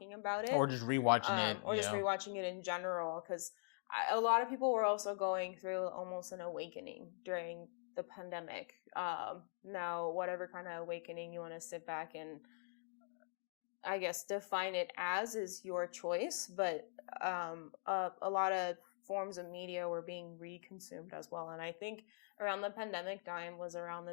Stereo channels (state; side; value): silent; right; digital silence